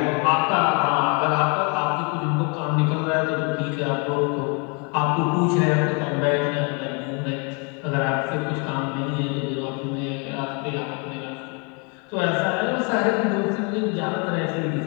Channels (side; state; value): right; quieter; 34.6 dB